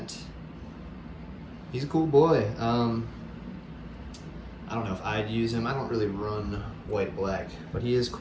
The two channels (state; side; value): identical; both; correlation 1.00